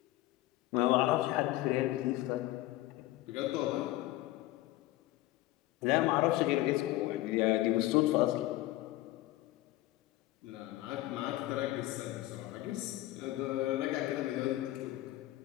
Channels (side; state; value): right; quieter; 16.8 dB